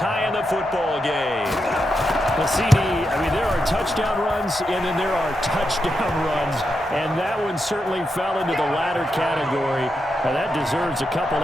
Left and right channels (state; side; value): normal; both; correlation 0.85